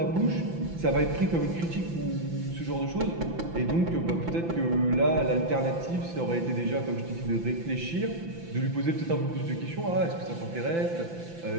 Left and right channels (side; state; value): left; late; 5.9 ms